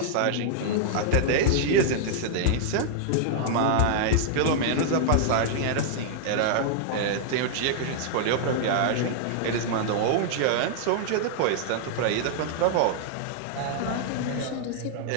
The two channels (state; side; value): different; both; correlation -0.01